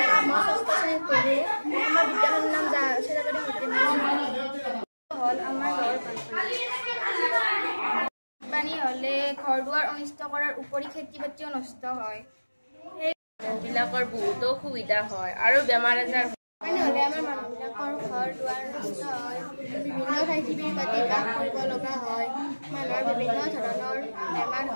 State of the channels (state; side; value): inverted; both; correlation -1.00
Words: মই ৬ষ্ঠ শ্ৰেণীত পঢ়োঁ। আমাৰ বিদ্যালয়খনৰ নাম জাহাজ চলাবাৰী মধ্য ইংৰাজী বিদ্যালয়। হ'ল আমাৰ গাঁৱৰ বানপানী হ'লে ঘৰ দুৱাৰ অনিষ্ট কৰাৰ উপৰি খেতি বাতিও নষ্ট হয়। সেইবিলাকৰ বহুতো অসুবিধা হয় আৰু বেমাৰ আজাৰ বানপানী হ'লে আমাৰ মানুহবিলাকৰ ঘৰ দুৱাৰ নষ্ট হয়, বিভিন্ন ঠাইত শিবিৰ পাতি বাস কৰিব লগা হয়, মানুহৰ বিভিন্ন ধৰণৰ বেমাৰ